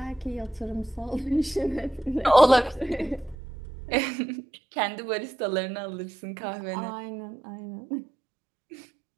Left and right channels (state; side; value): drops out; left; at 3.4 s